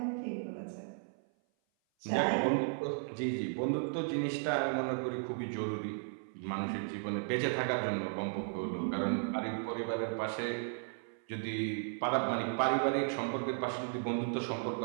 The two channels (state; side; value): silent; left; 54 dB below the other